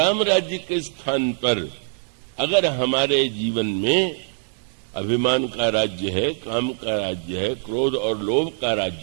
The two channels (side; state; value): left; silent; digital silence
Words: राज्य के स्थान पर अगर हमारे जीवन में अभिमान का राज्य है, काम का राज्य है, क्रोध और लोभ का